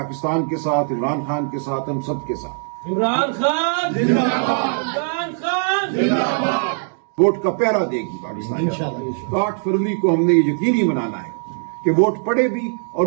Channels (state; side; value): silent; left; 62 dB below the other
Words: کے ساتھ، عمران خان کے ساتھ، ہم سب کے ساتھ. عمران خان زندہ باد، عمران خان زندہ باد. ووٹ کا پہرا دے گی پاکستان. تو 8 فروری کو ہم نے یہ یقینی بنانا ہے کہ ووٹ پڑے بھی اور